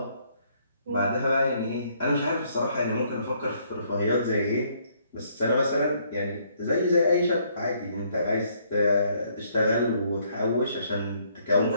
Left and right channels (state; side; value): inverted; both; correlation -0.68